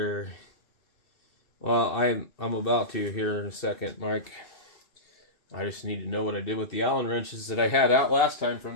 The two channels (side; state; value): right; late; 2.7 ms